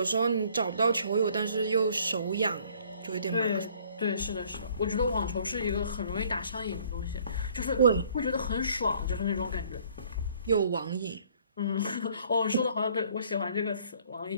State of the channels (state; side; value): inverted; both; correlation -0.59